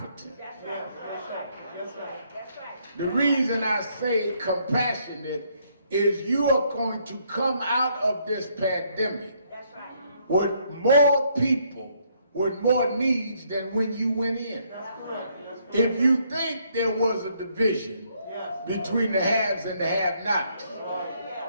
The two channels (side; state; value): both; inverted; correlation -0.70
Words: That's right. That's right. That's right. That's right. The reason I say compassionate is you are going to come out of this pandemic with more people with more needs than when you went in. If you think there was a division between the haves and the have-nots,